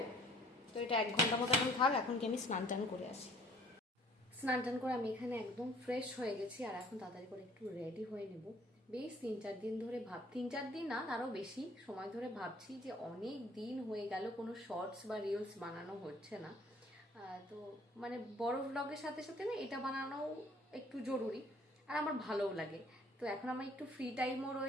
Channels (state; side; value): normal; both; correlation 0.55